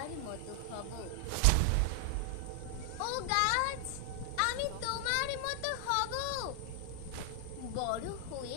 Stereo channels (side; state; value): both; different; correlation 0.00